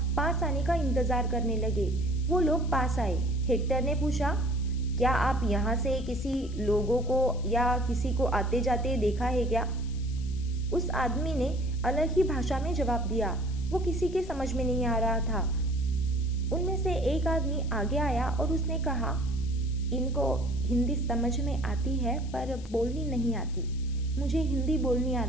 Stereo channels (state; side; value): noise; left; hiss, 22 dB below the sound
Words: पास आने का इंतजार करने लगे। वो लोग पास आए। हेक्टर ने पूछा, क्या आप यहाँ से किसी लोगों को या किसी को आते जाते देखा है क्या? उस आदमी ने अलग ही भाषा में जवाब दिया। वो किसी के समझ में नहीं आ रहा था। उनमें से एक आदमी आगे आया और उसने कहा, इनको हिंदी समझ में आती है पर बोलनी नहीं आती। मुझे हिंदी बोलनी